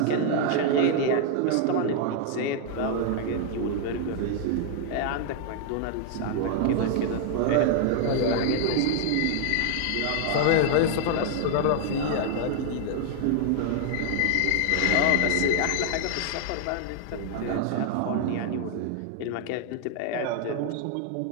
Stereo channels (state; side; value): different; both; correlation 0.00